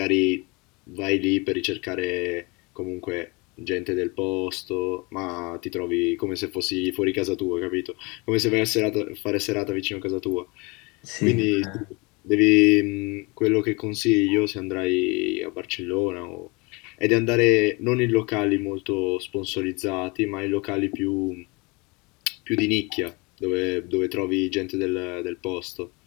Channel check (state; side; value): quieter; right; 27.4 dB